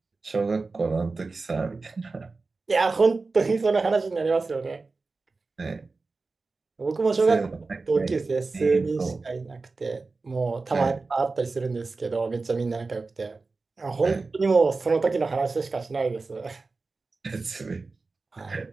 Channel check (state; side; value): quieter; left; 3.8 dB